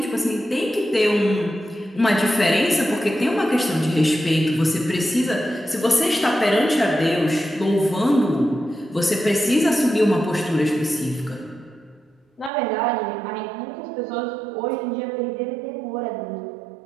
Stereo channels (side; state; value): left; drops out; at 12.5 s